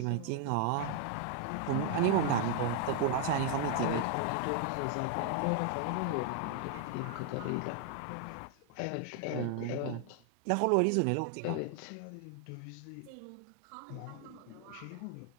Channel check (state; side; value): different; both; correlation 0.00